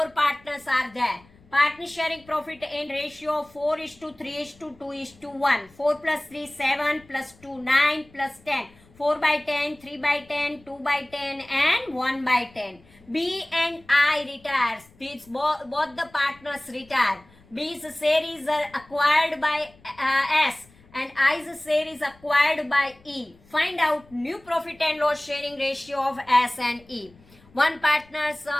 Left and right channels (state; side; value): noise; left; rumble, 27 dB below the sound